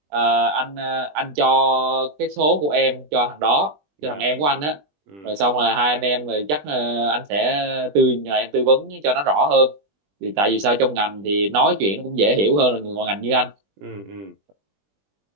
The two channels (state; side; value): late; left; 20 ms